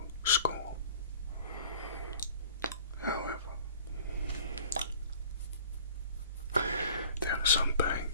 score. However, there are some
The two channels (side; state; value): both; inverted; correlation -0.47